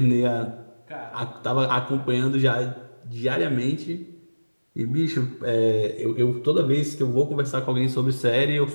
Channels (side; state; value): both; inverted; correlation -1.00